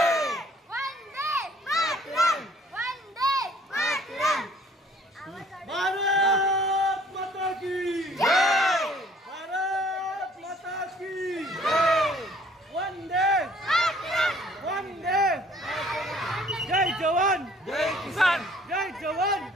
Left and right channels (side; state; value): both; normal; correlation 0.58